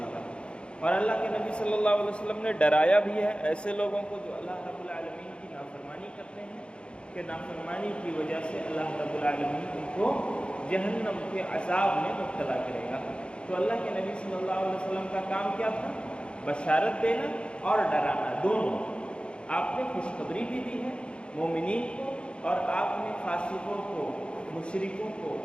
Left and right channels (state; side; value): late; right; 0.056 ms